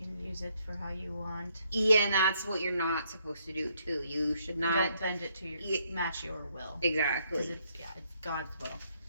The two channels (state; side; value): inverted; both; correlation -0.72